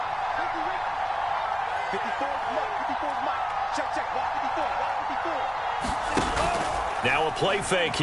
Now a play fake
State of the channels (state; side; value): identical; both; correlation 1.00